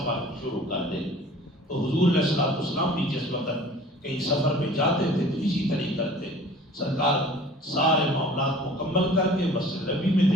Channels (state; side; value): normal; both; correlation 0.47